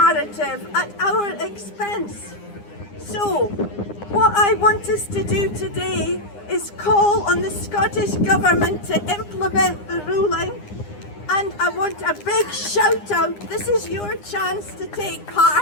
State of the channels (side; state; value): right; late; 9.8 ms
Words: at our expense? So, what I want us to do today is call on the Scottish Government to implement the ruling, and I want a big shout out. This is your chance to take